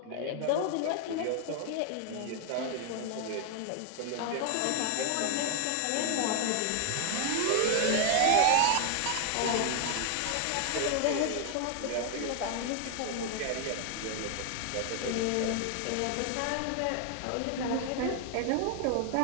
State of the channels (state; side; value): different; both; correlation 0.00